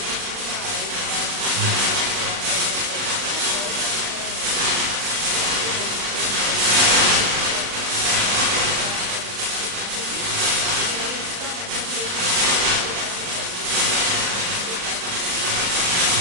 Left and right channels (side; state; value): left; late; 40 ms